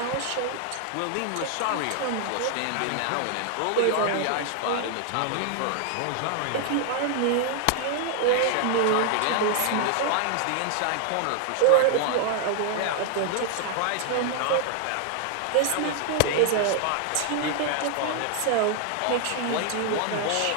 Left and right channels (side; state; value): both; different; correlation 0.00